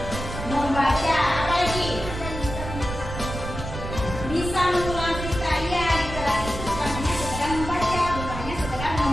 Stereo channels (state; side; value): noise; right; rumble, 7 dB below the sound